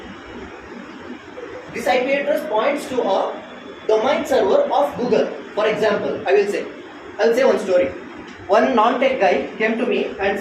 points to a domain server of Google. For example, I'll say one story. One non-tech guy came to me and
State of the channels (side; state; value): both; identical; correlation 1.00